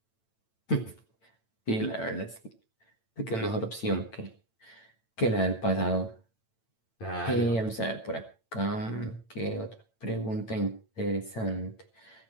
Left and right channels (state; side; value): late; right; 8.9 ms